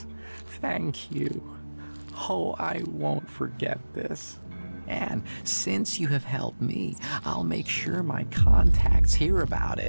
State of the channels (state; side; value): inverted; both; correlation -1.00